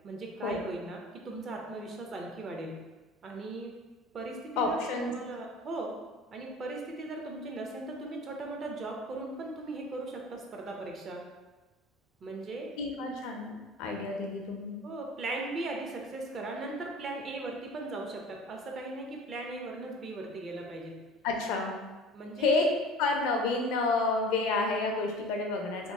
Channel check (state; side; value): normal; both; correlation 0.41